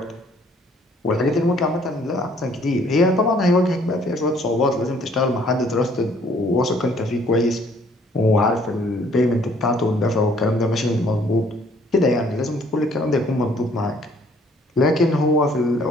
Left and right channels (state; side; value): normal; both; correlation 0.61